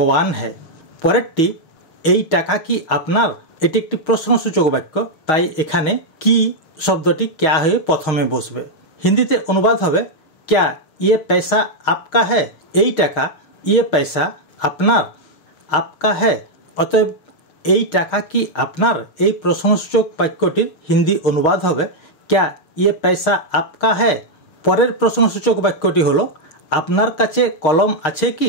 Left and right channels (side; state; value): right; late; 6.4 ms